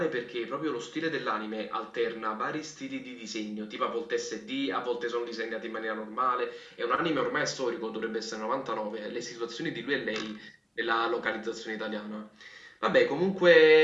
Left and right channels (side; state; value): both; identical; correlation 1.00